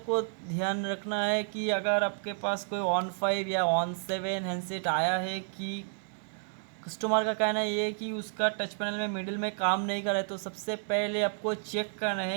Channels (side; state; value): left; silent; 57 dB below the other